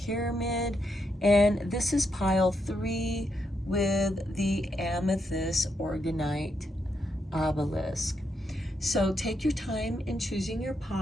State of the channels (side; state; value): both; normal; correlation 0.80